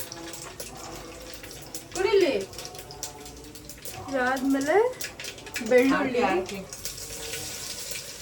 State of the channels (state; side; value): identical; both; correlation 1.00